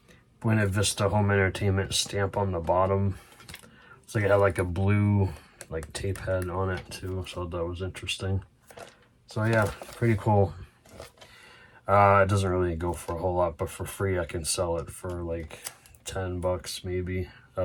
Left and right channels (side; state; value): both; identical; correlation 1.00